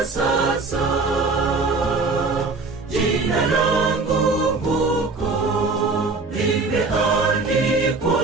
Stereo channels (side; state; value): left; quieter; 3.9 dB